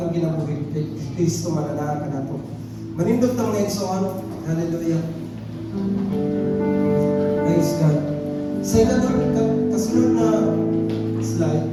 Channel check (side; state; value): both; identical; correlation 1.00